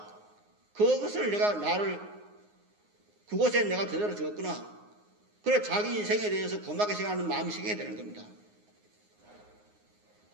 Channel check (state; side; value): late; left; 9.6 ms